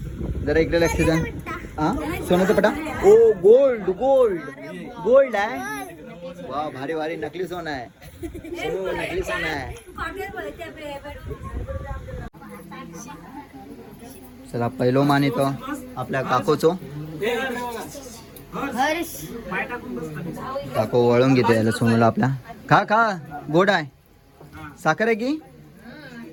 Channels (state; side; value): identical; both; correlation 1.00